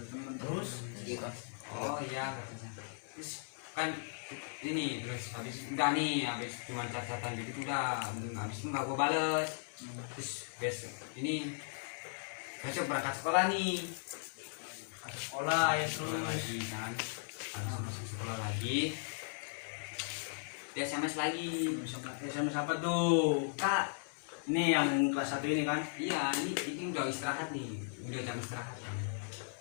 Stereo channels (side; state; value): right; silent; 53 dB below the other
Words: Terus Iya. Oh iya kata saya. Terus kan ini terus habis udah nih habis cuma catatan gitu udah habis itu nggak gua bales. Terus besok ini besok berangkat sekolah nih. ada sekolah ya Sekolah terus. lagi kan habis masuk sekolah lagi dia SMS lagi. SMS apa tuh? Kak Ini yang kelas 1 ini kan? iya ini udah istirahat nih udah jam istirahat kan.